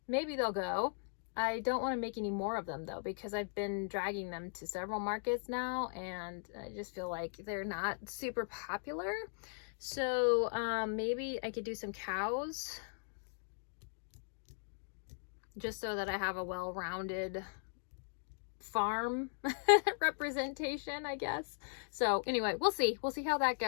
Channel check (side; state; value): right; silent; digital silence